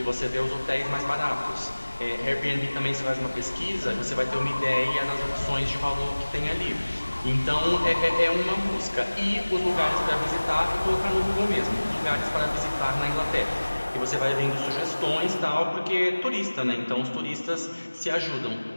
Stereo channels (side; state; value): both; inverted; correlation -1.00